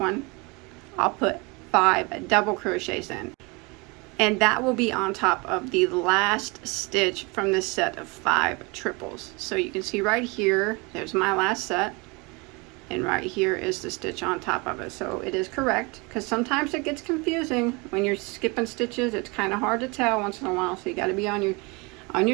I'll put 5 double crochets in, and that will be on top of the last stitch from this set of 5 triples. So you can see right here, there's my last set, and right here is the stitch on top of it. So it is correct, because sometimes it gets confusing when you're skipping stitches. It's kind of hard to tell once in a while, so you got to be on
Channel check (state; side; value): quieter; left; 27.9 dB